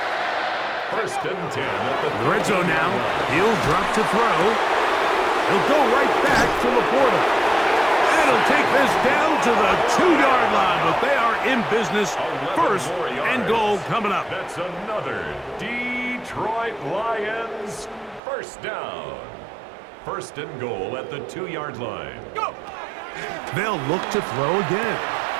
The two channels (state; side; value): drops out; left; at 18.2 s